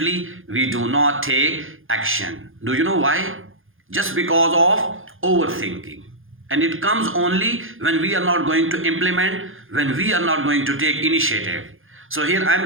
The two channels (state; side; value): late; left; 0.59 ms